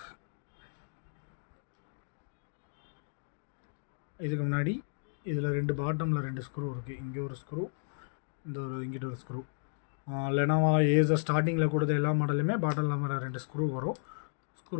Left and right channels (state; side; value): silent; right; digital silence